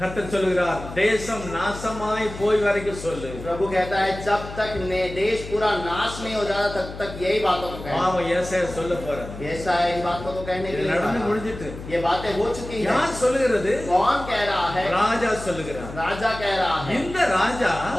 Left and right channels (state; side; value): noise; left; hum, 12 dB below the sound